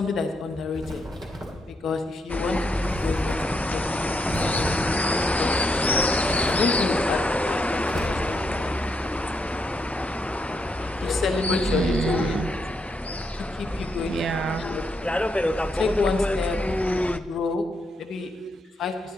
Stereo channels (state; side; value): normal; both; correlation 0.78